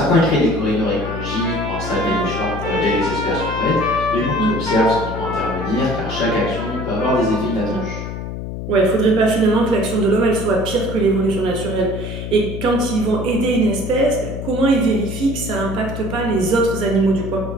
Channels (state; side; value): noise; left; hum, 7 dB below the sound